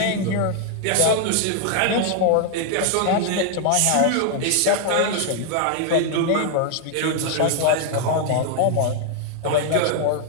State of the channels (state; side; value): different; both; correlation 0.00